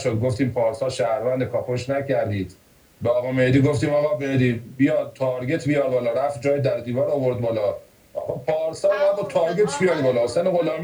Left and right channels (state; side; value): identical; both; correlation 1.00